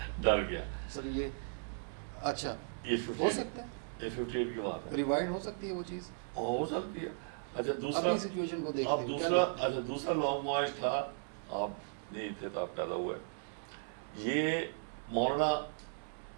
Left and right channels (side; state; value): left; silent; 53 dB below the other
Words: ڈر گیا. سر یہ اچھا یہ ہو سکتا ہے، یہ 58 کی بات ہے. ریوائنڈ ہو سکتی ہے وہ چیز، ہو سکتی ہے. اچھا دوسرا، اپنی سچویشن کو دیکھتے اب دوسرا، اچھا دوسرا لانگ مارچ تھا، آپ نہیں تھے تو آپ پیدا ہوئے. یہ مولانا